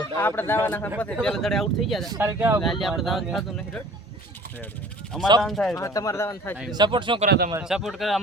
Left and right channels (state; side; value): normal; both; correlation 0.48